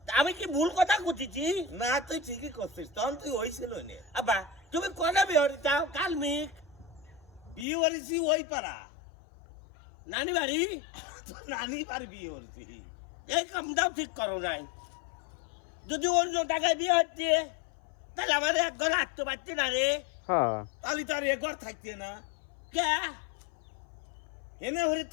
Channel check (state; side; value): drops out; right; at 7.7 s